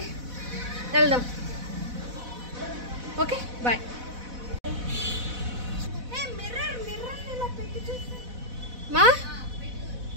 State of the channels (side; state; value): left; late; 4.0 ms